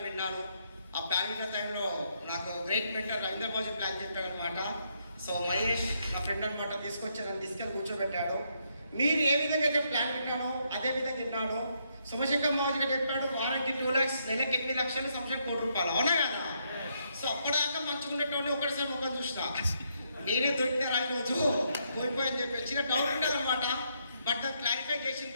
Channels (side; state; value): both; inverted; correlation -0.76